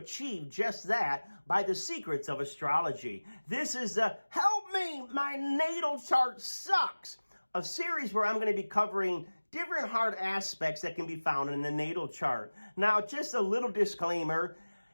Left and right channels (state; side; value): inverted; both; correlation -1.00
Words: just that by the secrets of astrology. This is the Help Me, My Natal Chart Sucks, a series where I'm going to be covering different hard aspects that can be found in the natal chart. Now, just a little disclaimer.